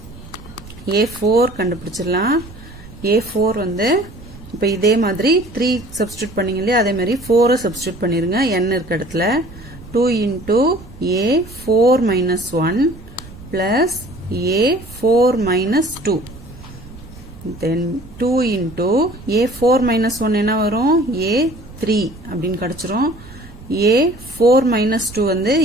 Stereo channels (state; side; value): noise; right; rumble, 18 dB below the sound